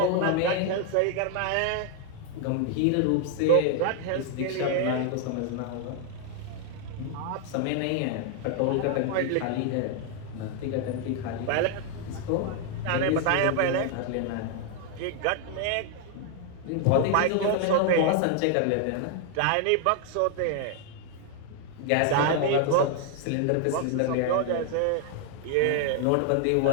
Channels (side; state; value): both; different; correlation 0.00